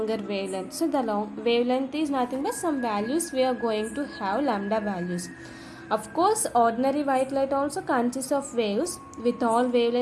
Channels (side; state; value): both; identical; correlation 1.00